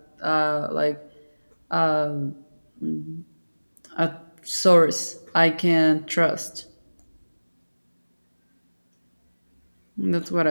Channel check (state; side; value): inverted; both; correlation -1.00